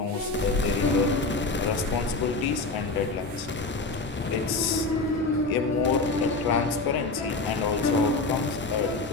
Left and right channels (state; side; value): quieter; right; 3.5 dB